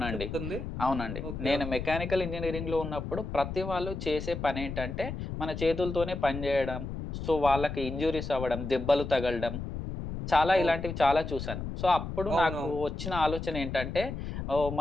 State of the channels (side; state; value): left; noise; rumble, 6 dB below the sound